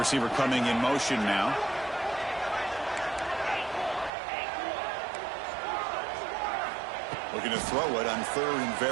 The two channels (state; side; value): drops out; left; at 4.1 s